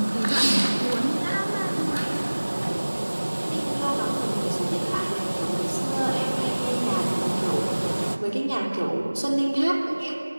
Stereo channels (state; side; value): inverted; both; correlation -1.00